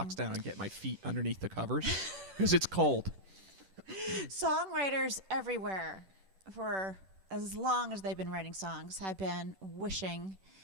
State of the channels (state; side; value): late; left; 10 ms